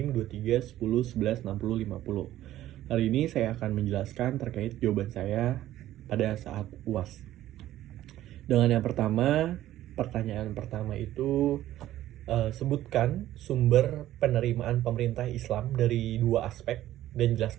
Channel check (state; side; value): quieter; left; 13.7 dB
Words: 23 10 11 60 50. Hari ini saya akan menjelaskan terkait jawaban saya pada saat UAS. Dengan yang pertama, pertanyaan pertama itu sebutkan sumber penerimaan pemerintah Islam dari dua aspek dan